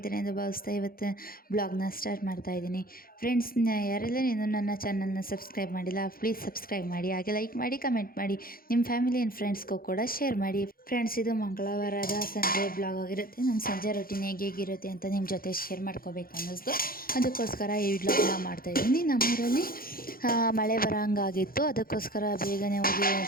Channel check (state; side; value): late; right; 0.42 ms